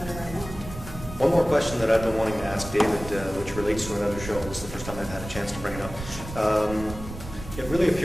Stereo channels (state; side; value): noise; right; rumble, 11 dB below the sound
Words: I want. One more question that I've been wanting to ask David, which relates to another show. This is the first time I've had a chance to bring it up. It really